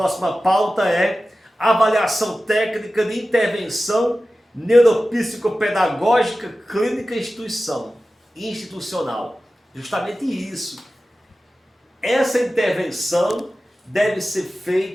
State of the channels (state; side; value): normal; both; correlation 0.95